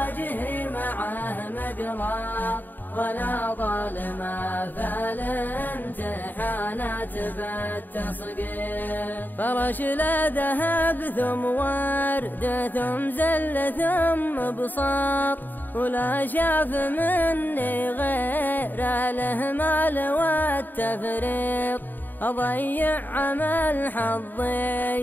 معه مقرار، ولا ظالم فالامتحانات بالتصقيط. فرش لا ذهب ثم ورد ثم زل ثم بساط، ولا شاف مني غير الإهمال والتفريط. أضيع عمل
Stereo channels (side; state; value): right; late; 0.089 ms